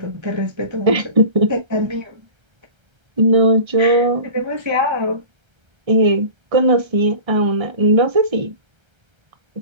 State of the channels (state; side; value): late; left; 1.3 ms